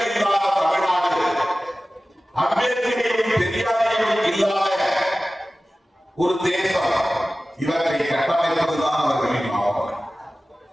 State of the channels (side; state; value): both; normal; correlation 0.96